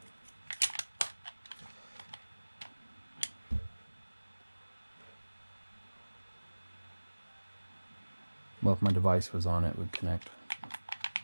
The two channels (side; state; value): both; inverted; correlation -1.00